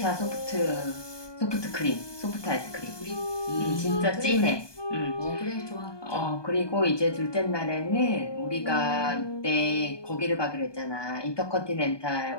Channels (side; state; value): right; late; 1.2 ms